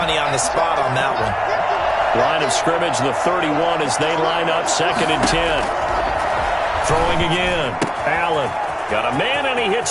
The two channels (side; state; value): both; identical; correlation 1.00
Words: on the spot on that one. Line of scrimmage, the 31 as they line up 2nd and 10. Throwing again. Allen got a man, and he